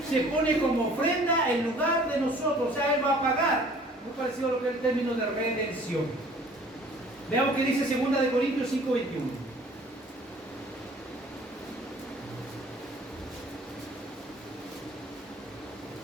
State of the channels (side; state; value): both; normal; correlation 0.52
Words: se pone como ofrenda en lugar de nosotros, o sea, Él va a pagar. Muy parecido a lo que es el término de redención. Veamos qué dice 2 Corintios 5:21.